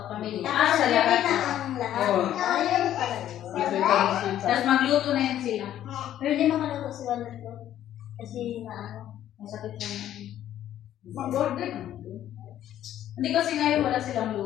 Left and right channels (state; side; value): quieter; right; 11.7 dB